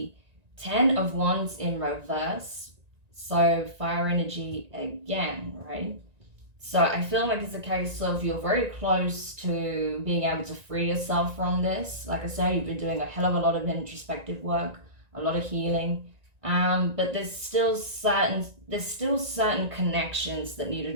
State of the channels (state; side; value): late; left; 1.9 ms